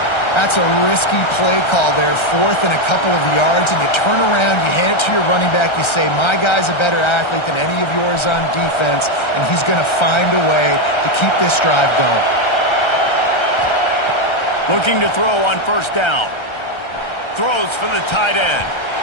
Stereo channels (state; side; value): late; right; 1.3 ms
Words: That's a risky play call there, fourth and a couple of yards, and you turn around, you hand it to your running back, you say, my guy's a better athlete than any of yours on defense, and he's going to find a way to keep this drive going. Looking to throw on first down. Throws for the tight end.